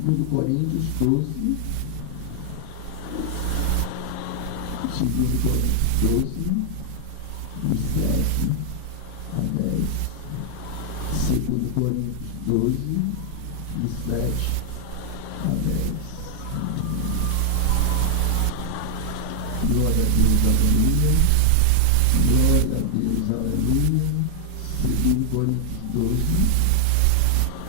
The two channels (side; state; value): both; different; correlation 0.00